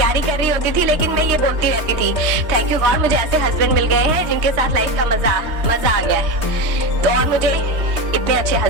कर रही होती थी लेकिन मैं ये बोलती रहती थी, थैंक यू गॉड मुझे ऐसे हस्बैंड मिल गए हैं जिनके साथ लाइफ का मजा आ गया है। तो और मुझे इतने अच्छे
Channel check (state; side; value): late; left; 3.2 ms